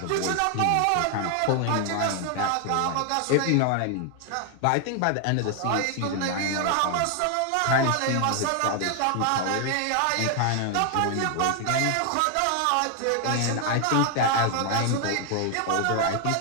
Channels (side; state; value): both; different; correlation 0.00